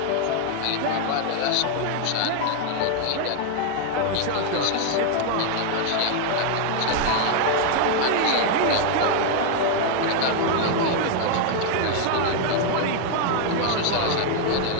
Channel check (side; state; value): both; different; correlation 0.00